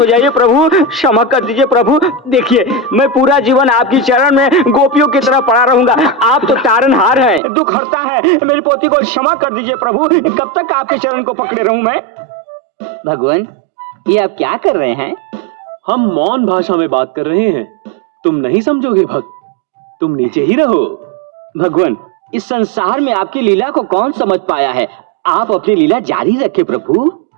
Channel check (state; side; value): drops out; left; at 7.4 s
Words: जाइए प्रभु, क्षमा कर दीजिए प्रभु। देखिए मैं पूरा जीवन आपकी चरण में गोपियों की तरह पड़ा रहूंगा। आप तो तारनहार हैं, दुख हरता है। मेरी पोती को क्षमा कर दीजिए प्रभु। कब तक आपके चरण को पकड़े रहूं मैं? भगवान ये आप क्या कर रहे हैं? हम मौन भाषा में बात कर रहे हैं। तुम नहीं समझोगे भक्त, तुम नीचे ही रहो। भगवान इस संसार में आपकी लीला को कौन समझ पाया है? आप अपनी लीला जारी रखें प्रभु।